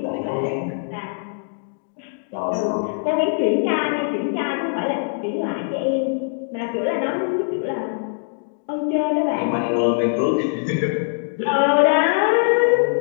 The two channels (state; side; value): silent; right; digital silence